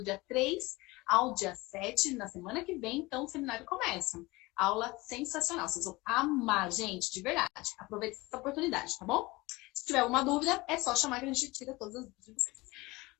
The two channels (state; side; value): quieter; right; 22.0 dB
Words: dia 3 ao dia 7, na semana que vem, então, o seminário começa. Aula sensacional, vocês vão amar, gente, de verdade. Aproveite essa oportunidade, tá bom? Se tiver alguma dúvida, é só chamar que a gente tira todas as dúvidas de vocês.